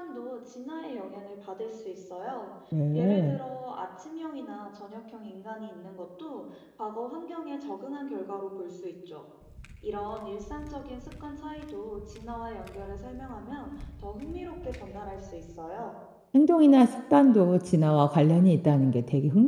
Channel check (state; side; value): identical; both; correlation 1.00